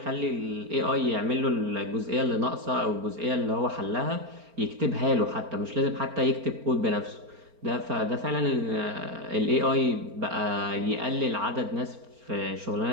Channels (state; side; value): late; left; 4.4 ms